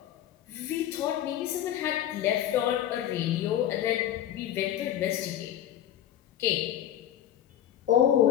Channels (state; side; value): quieter; right; 11.3 dB